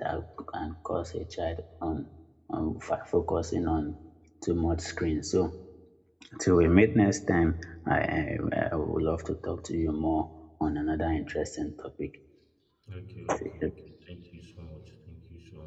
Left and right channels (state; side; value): identical; both; correlation 1.00